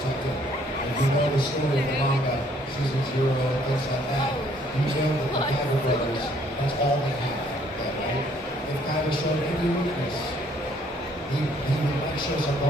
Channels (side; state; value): both; normal; correlation 0.63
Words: him. If you know the story of the manga, season 0, and things like that, you know that the Kaiba brothers, that's all they have, right? If Kaiba showed any weakness, he would show some